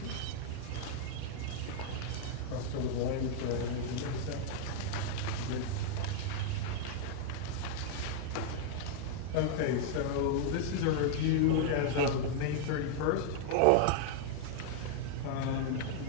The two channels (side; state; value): both; different; correlation -0.01